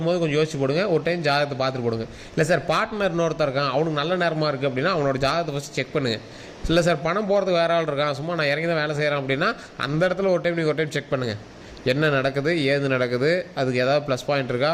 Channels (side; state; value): both; identical; correlation 1.00